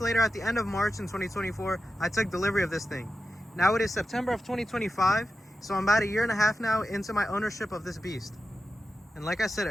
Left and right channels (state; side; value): normal; both; correlation 0.91